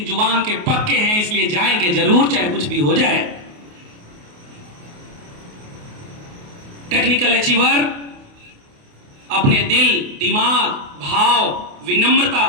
जुबान के पक्के हैं, इसलिए जाएंगे जरूर चाहे कुछ भी हो जाए। टेक्निकल अचीवर अपने दिल, दिमाग, भाव, विनम्रता,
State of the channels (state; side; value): late; left; 28 ms